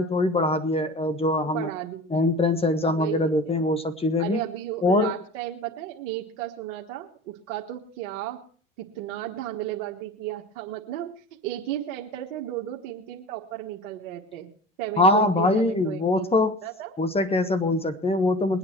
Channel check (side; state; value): both; normal; correlation 0.36